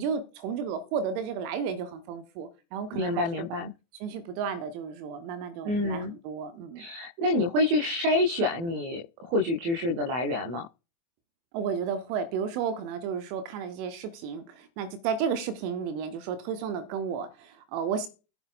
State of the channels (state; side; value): late; left; 24 ms